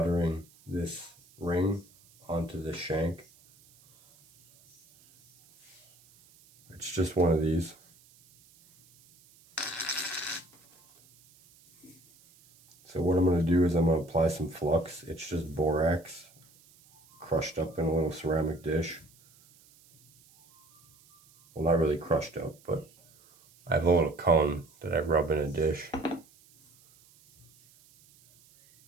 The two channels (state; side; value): noise; right; hiss, 29 dB below the sound